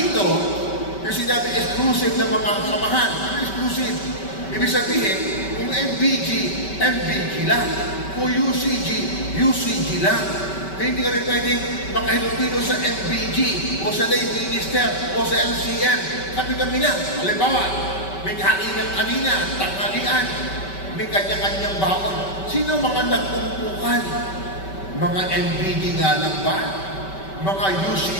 yung sinabi exclusive ng mga samahan. Ano exclusive? Ibig sabihin, kung MBG, MBG lang. Kung UCG, UCG lang. Kaya hindi ka rin pwedeng makahilupino sa MBG o sa lay minister o sa LCM. Kami lang. Halimbawa, may kaninang-kanina, tanghalian, may kanya-kanyang baon. Sino mga nagpumpukan? Mga MBG nga lang ba? Mga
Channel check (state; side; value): late; right; 5.2 ms